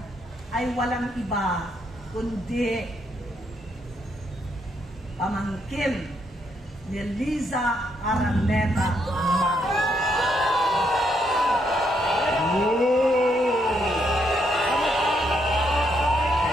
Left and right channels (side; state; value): both; normal; correlation 0.76